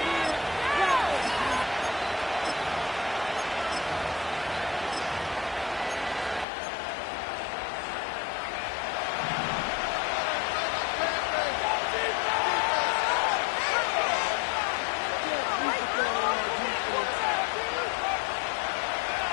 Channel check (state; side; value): drops out; right; at 6.5 s